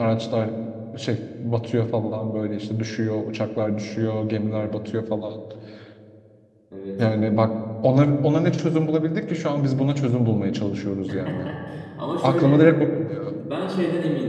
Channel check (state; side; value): identical; both; correlation 1.00